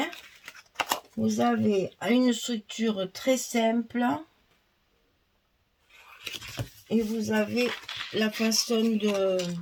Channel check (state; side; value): identical; both; correlation 1.00